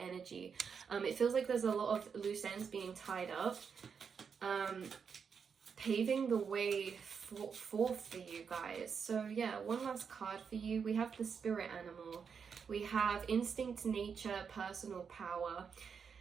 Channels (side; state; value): left; quieter; 6.4 dB